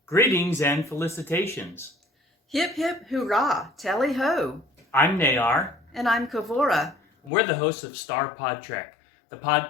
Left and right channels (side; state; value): right; drops out; at 7.3 s